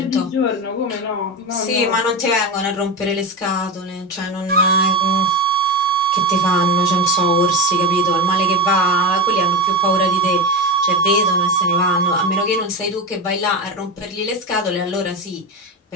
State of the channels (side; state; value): both; normal; correlation 0.19